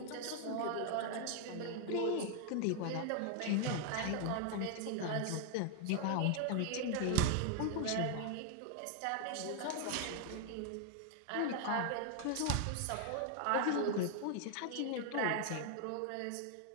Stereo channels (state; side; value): different; both; correlation 0.00